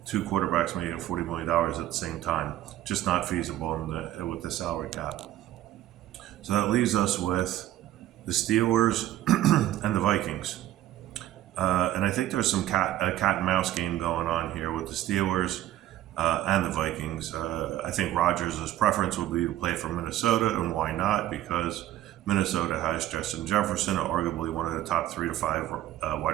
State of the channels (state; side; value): quieter; left; 13.5 dB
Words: two quarterbacks making $40 million at the same time. Just not feasible with the salary cap. So that leaves us with the Steelers and the Vikings. And I think there's a cat and mouse game going on here with the Steelers and the Vikings. I think Rodgers' preference would be to play for Minnesota, and why not? Because Minnesota has Justin Jefferson, arguably one of the top 3 to 5